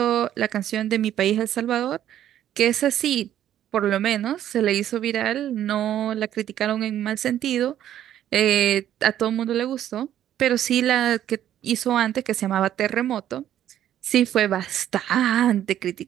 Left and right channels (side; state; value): left; quieter; 11.3 dB